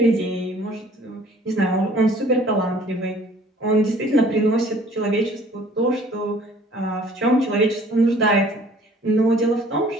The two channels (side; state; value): both; normal; correlation 0.54